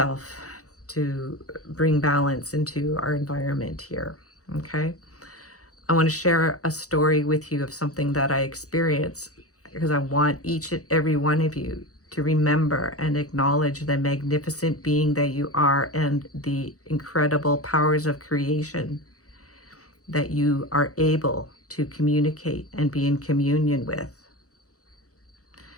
to bring balance into our environment here. Okay. I want to share a story with you of something that I experienced, because I want each and every one of you to remember and acknowledge the magnificent being that you are and the incredible powers of creation that you are able to communicate and be in communion with.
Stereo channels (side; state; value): right; late; 0.66 ms